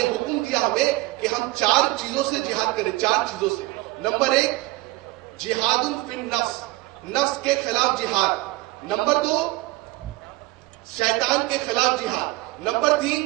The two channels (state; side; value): quieter; left; 20.2 dB